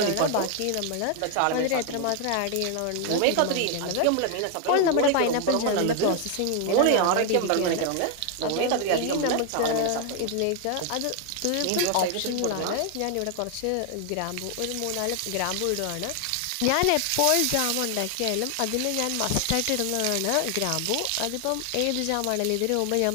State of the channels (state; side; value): different; both; correlation 0.00